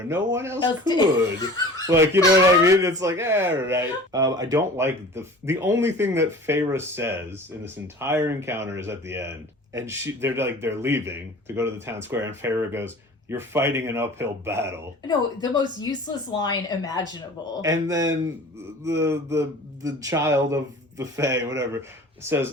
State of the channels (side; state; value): both; normal; correlation 0.42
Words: no one else could. Like, you know what I mean? It's like, all right. I don't like the only thing that Feyre says in this entire encounter is at the end. And they're leaving to go to the town square, and Feyre goes, "You're fighting an uphill battle." No, the most useless line imaginable. And then the child of the Fae, whatever,